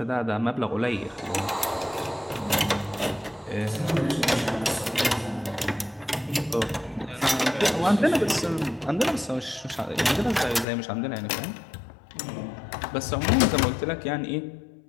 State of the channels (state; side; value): drops out; right; at 10.7 s